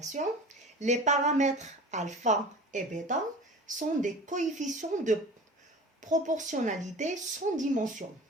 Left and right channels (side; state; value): both; normal; correlation 0.38